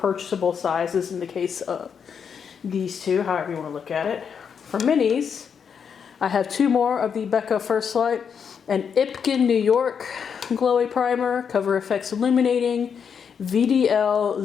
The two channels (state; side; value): quieter; right; 6.9 dB